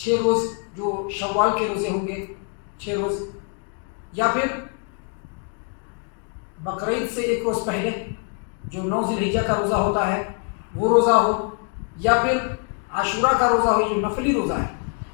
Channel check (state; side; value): quieter; right; 38.5 dB